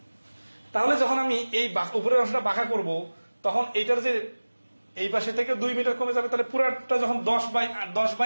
তাহলে যখন আমি এই উপরের অংশটা বাঁকা করব, তখন এইটার যে এই পাশে থেকে 2 মিটার কমে যাবে, তাহলে পুরাটা যখন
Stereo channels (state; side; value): inverted; both; correlation -1.00